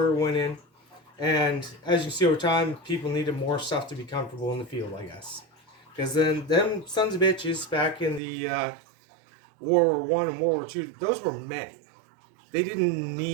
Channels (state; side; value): drops out; left; at 8.2 s